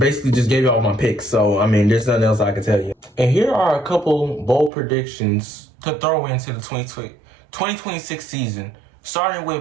just gave you all my picks. So I mean there's nothing else I can tell you. And here are a couple bold predictions to throw into the 2026 season, starting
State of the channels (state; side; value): drops out; left; at 4.7 s